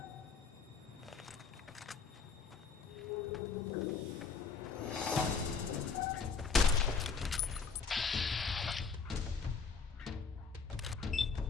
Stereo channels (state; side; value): quieter; right; 5.3 dB